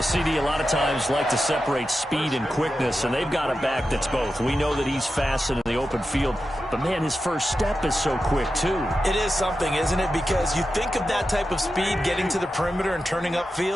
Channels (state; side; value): normal; both; correlation 0.91